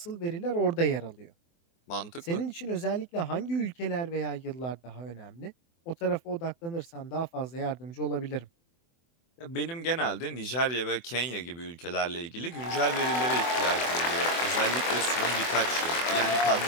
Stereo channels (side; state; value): right; late; 24 ms